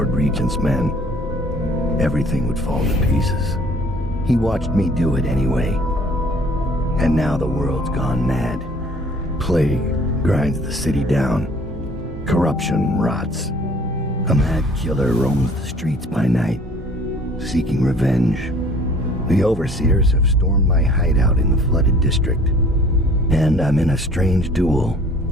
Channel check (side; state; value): both; normal; correlation 0.53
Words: Regent's men, everything would fall to pieces. He watched me do it anyway. And now the world's gone mad. Plague grinds the city down. Corruption rots. A mad killer roams the streets by night, seeking revenge. The overseers have stormed my hideout in the flooded district, and I'm in a strange duel